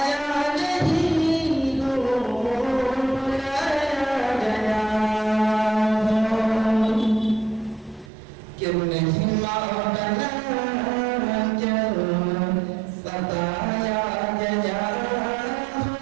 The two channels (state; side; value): drops out; left; at 8.1 s